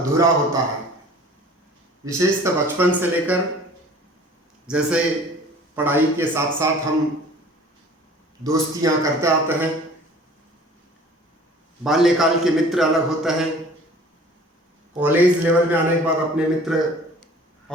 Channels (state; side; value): normal; both; correlation 0.48